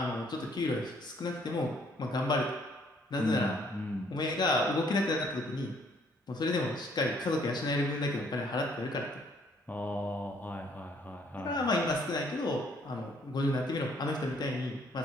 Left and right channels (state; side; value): normal; both; correlation 0.64